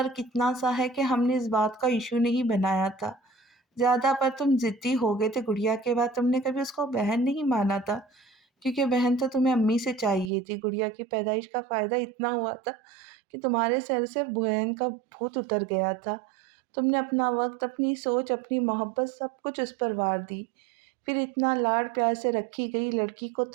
اتنا سا ہے کہ ہم نے اس بات کا ایشو نہیں بنایا تھا، زیادہ پر تم ضدی ہو گئے تھے گڑیا کے بعد، تم نے کبھی اس کو بہن نہیں مانا تھا، کیونکہ بہن تو تمہیں امی سے چاہیے تھی۔ گڑیا کی پیدائش کا فائدہ اتنا ہوا تھا کہ تمہارے سر سے بہن کا بھوت اتر گیا تھا۔ تم نے اپنا وقت، اپنی سوچ، اپنی محبت سب کچھ اس پر وار دی۔ پھر اتنا لاڑ پیار سے رکھی گئی لڑکی کو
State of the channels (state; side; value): drops out; left; at 10.3 s